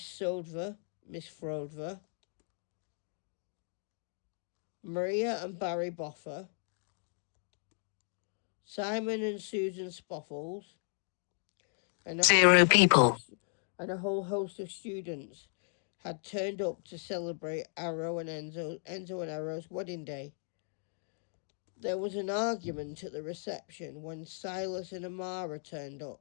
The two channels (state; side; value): silent; right; 54 dB below the other